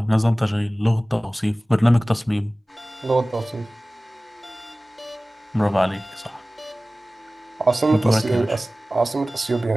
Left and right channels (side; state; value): both; normal; correlation 0.98